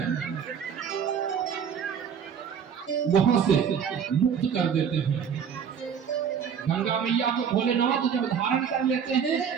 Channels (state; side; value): quieter; left; 7.5 dB